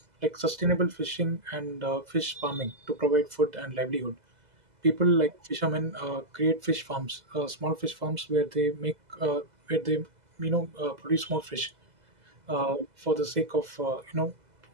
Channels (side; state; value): left; late; 2.0 ms